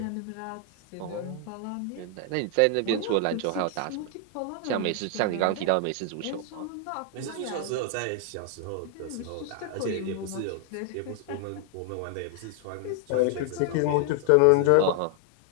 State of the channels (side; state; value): both; different; correlation 0.00